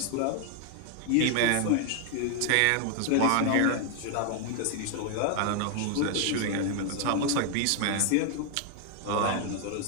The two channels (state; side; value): different; both; correlation 0.00